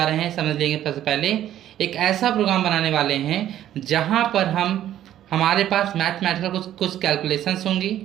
रहे हैं। समझ लेंगे सबसे पहले एक ऐसा प्रोग्राम बनाने वाले हैं जहाँ पर हमारे पास मैथमेटिकल कुछ कैलकुलेशंस होंगी।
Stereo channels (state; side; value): quieter; left; 11.9 dB